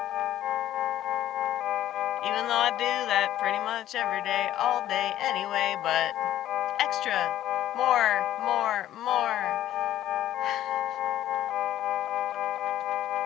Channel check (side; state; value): right; quieter; 12.7 dB